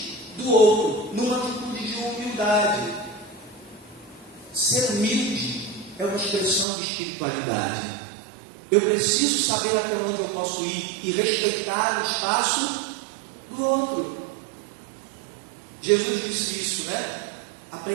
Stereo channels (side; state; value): left; drops out; at 6.7 s